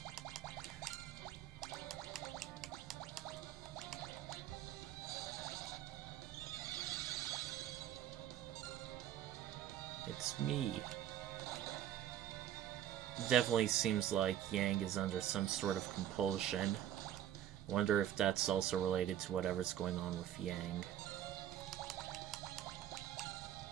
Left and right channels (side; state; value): left; quieter; 11.1 dB